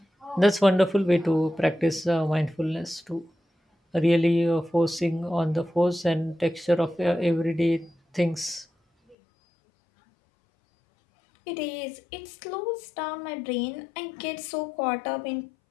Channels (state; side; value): drops out; right; at 9.2 s